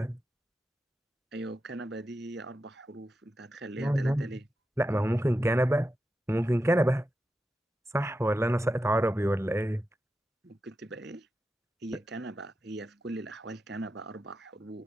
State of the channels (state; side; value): normal; both; correlation 0.89